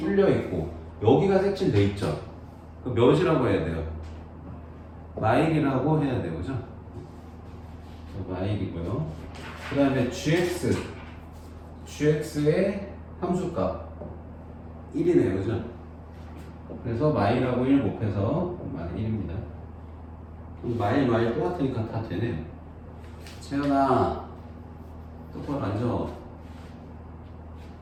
있고, 여기가 색칠돼 있죠? 그럼 몇이라고 해야 돼요? 마일이라고 해야 돼요, 그죠? 마일이고요. 그 다음에 gx의 함수값 1이네요, 그죠? 그래서 마일하고 1 곱해서 마일 1입니다. 마일 똑같으니까 다 되네요. 채연아, 똑바로 앉아.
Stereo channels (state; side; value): identical; both; correlation 1.00